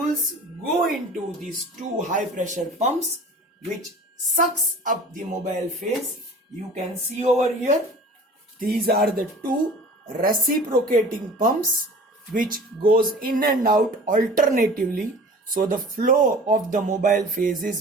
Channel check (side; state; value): both; normal; correlation 0.42